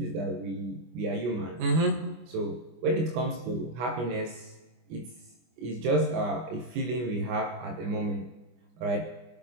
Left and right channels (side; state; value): left; late; 25 ms